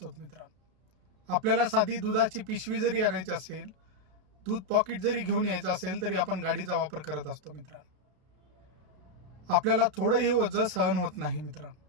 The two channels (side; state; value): left; late; 32 ms